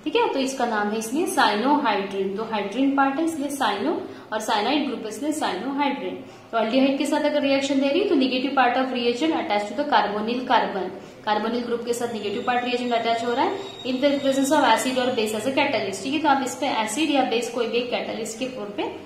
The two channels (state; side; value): identical; both; correlation 1.00